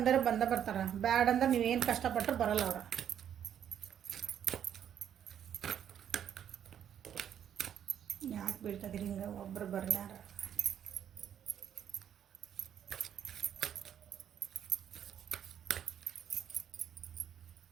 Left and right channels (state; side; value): quieter; left; 9.4 dB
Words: ಬರ್ತಾರೆ, ಬ್ಯಾಡ್ ಅಂದ್ರೆ ನೀವೇನು ಕಷ್ಟಪಟ್ಟರು ಬರಲ್ಲ ಅವ್ರು. ಯಾಕೆ ಬೀಳ್ತದಿರಿ ಹಿಂಗೆ? ಒಬ್ಬರು ಬರ್ಲಾರ.